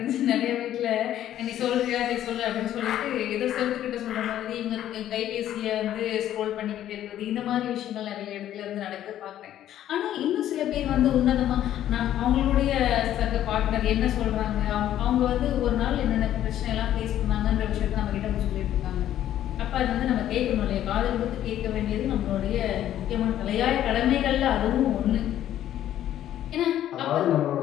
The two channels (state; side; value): quieter; right; 11.9 dB